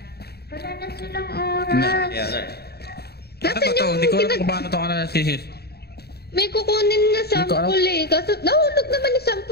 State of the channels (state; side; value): late; right; 0.47 ms